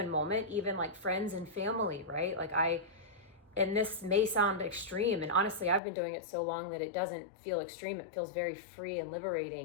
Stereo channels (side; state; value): right; drops out; at 5.8 s